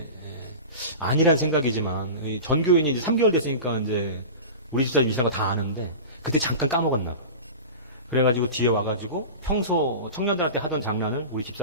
아니란 생각이지만 전교인이 이제 3개월 됐으니까 이제 우리 집사람 임신한 거 다 아는데 그때 잠깐 까먹었나 봐. 그래가지고 뒤에 와가지고 평소 청년들한테 하던 장난을 우리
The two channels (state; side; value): inverted; both; correlation -0.31